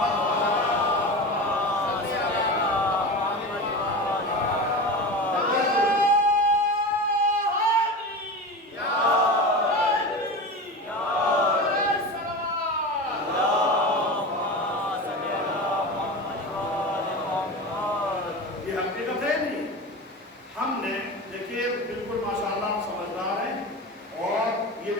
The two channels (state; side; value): normal; both; correlation 0.27